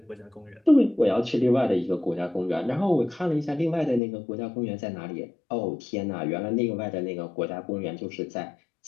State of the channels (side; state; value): right; drops out; at 4.0 s